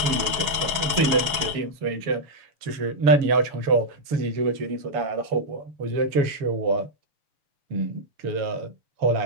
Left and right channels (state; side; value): late; left; 6.2 ms